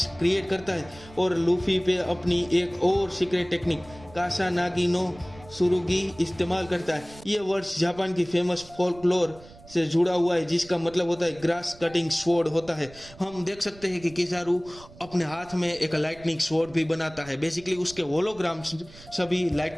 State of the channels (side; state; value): right; noise; rumble, 21 dB below the sound